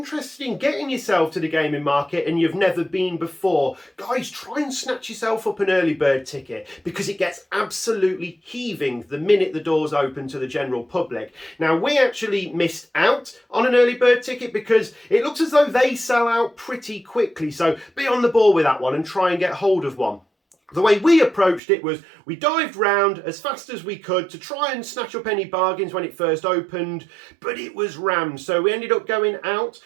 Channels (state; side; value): drops out; left; at 21.6 s